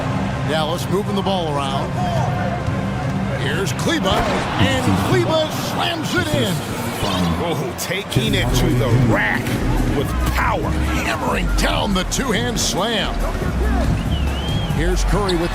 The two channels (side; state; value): both; identical; correlation 1.00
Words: Dallas moving the ball around. Here's Kleba, and Kleba slams it in. Oh, taking it to the rack with power. Hammering down the two-hand slam. Here's Curry with